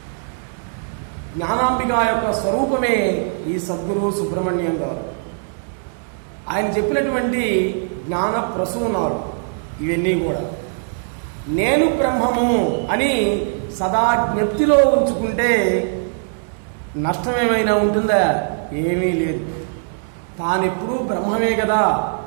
జ్ఞానాంబిక యొక్క స్వరూపమే ఈ సద్గురు సుబ్రహ్మణ్యం గారు. ఆయన చెప్పినటువంటి జ్ఞాన ప్రసూనాలు ఇవన్నీ కూడా నేను బ్రహ్మము అని సదా జ్ఞప్తిలో ఉంచుకుంటే నష్టమేమైనా ఉంటుందా? ఏమీ లేదు. తానెప్పుడూ బ్రహ్మమే కదా,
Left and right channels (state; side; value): silent; left; digital silence